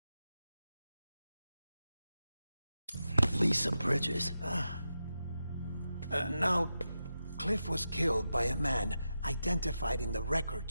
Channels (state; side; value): inverted; both; correlation -0.89